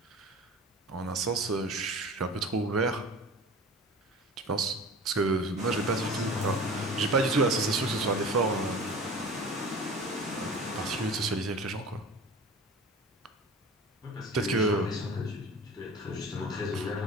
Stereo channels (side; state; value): both; normal; correlation 0.38